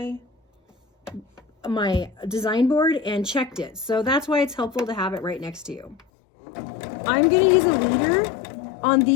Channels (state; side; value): drops out; right; at 6.1 s